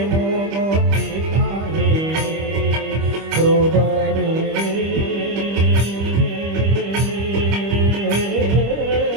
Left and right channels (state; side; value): late; left; 25 ms